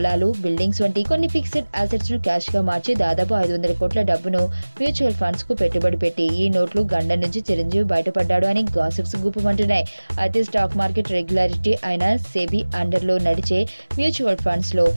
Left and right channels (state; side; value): inverted; both; correlation -1.00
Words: బిల్డింగ్స్ వంటి కొన్ని ఫిక్స్డ్ అసెట్స్ ను క్యాష్ గా మార్చి దాదాపు 500 కోట్ల డబ్బును మ్యూచువల్ ఫండ్స్ కు పెట్టుబడి పెట్టి ఈ నోట్లు గండం నుంచి చిరంజీవి బయటపడ్డాడు అని గాసిప్స్ గుప్పుమంటున్నాయి. అయితే స్టాక్ మార్కెట్ రెగ్యులారిటీ అయిన సెబీ అండర్ లో నడిచే మ్యూచువల్ ఫండ్స్ లో